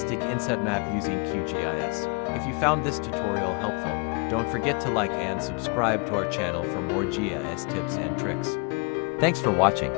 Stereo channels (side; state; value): right; quieter; 32.5 dB